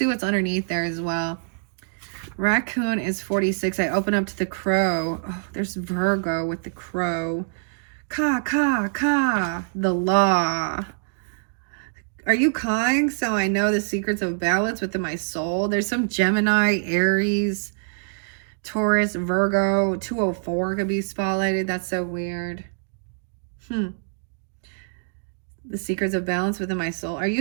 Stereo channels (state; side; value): silent; left; digital silence